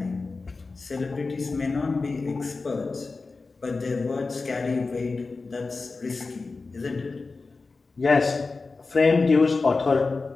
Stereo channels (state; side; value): quieter; right; 3.9 dB